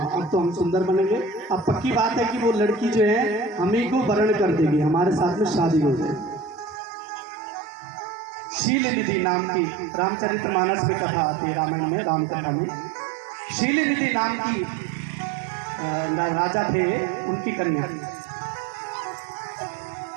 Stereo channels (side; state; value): left; drops out; at 6.8 s